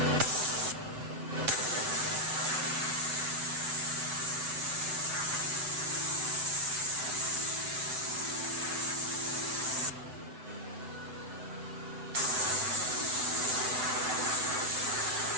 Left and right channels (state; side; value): late; left; 8.0 ms